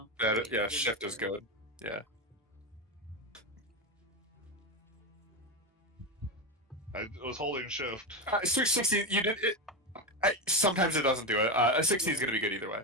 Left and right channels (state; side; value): normal; both; correlation 0.15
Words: Yeah, right, yeah, good. shift is good. Yeah. I was holding shift. 16. You did it. Sometimes it doesn't do it. A 16 is gonna be good either way.